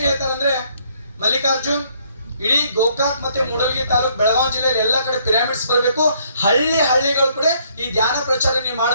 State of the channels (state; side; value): inverted; both; correlation -0.67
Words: ಹೇಳ್ತಾರಂದ್ರೆ, ಮಲ್ಲಿಕಾರ್ಜುನ್ ಇಡೀ ಗೋಕಾಕ್ ಮತ್ತೆ ಮೂಡಲಗಿ ತಾಲೂಕು ಬೆಳಗಾವಿ ಜಿಲ್ಲೆಯಲ್ಲಿ ಎಲ್ಲ ಕಡೆ ಪಿರಾಮಿಡ್ಸ್ ಬರಬೇಕು, ಹಳ್ಳಿಗಳು ಕೂಡ ಈ ಧ್ಯಾನ ಪ್ರಚಾರ ನೀವು